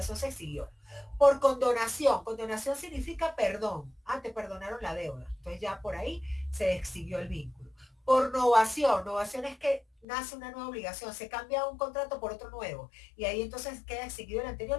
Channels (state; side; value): drops out; right; at 10.1 s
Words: se extinguió. Por condonación, condonación significa perdón, te perdonaron la deuda, entonces ya por ahí se extinguió el vínculo. Por novación, novación es que nace una nueva obligación, se cambia un contrato por otro nuevo y ahí entonces queda extinguido el